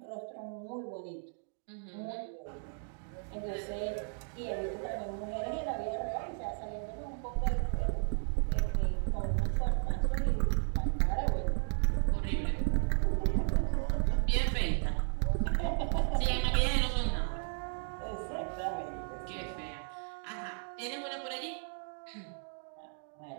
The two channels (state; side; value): silent; left; 55 dB below the other